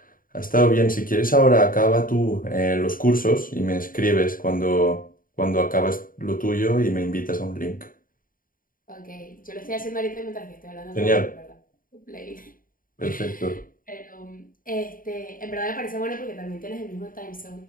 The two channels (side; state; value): right; late; 0.40 ms